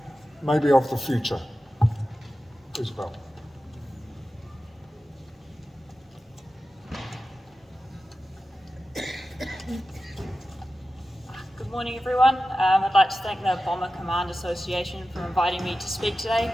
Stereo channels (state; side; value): normal; both; correlation 0.94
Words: maybe of the future. Isabel. Good morning, everyone. I'd like to thank the Bomber Command Association for inviting me to speak today